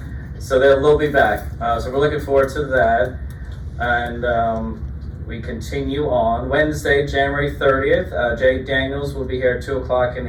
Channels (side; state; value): both; identical; correlation 1.00